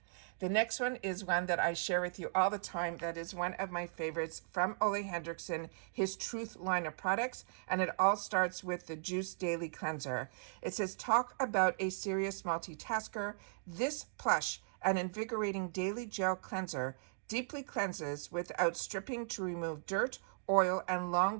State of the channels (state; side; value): silent; left; digital silence